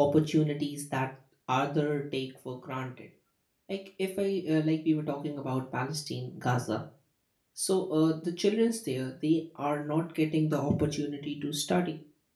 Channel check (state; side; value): identical; both; correlation 1.00